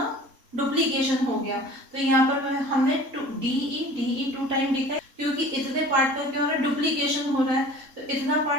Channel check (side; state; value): left; late; 3.7 ms